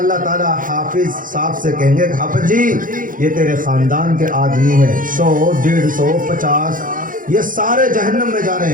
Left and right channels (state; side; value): late; left; 0.39 ms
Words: تعالیٰ حافظ صاحب سے کہیں گے کہ حافظ جی یہ تیرے خاندان کے آدمی ہیں، 100 150 50 یہ سارے جہنم میں جا رہے